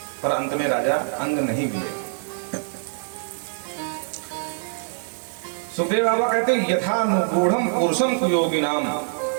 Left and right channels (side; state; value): left; silent; digital silence